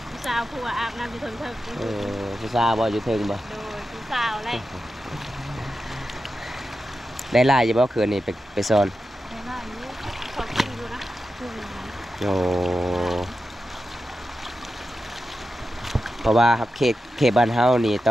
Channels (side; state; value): both; normal; correlation 0.91